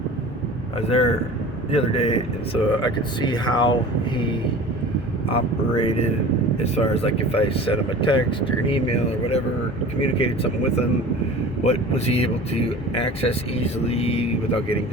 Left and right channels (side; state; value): both; normal; correlation 0.39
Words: I was there the other day, and so I could see how he operated as far as like if I sent him a text or an email or whatever, communicated something with him, what was he able to access easily without getting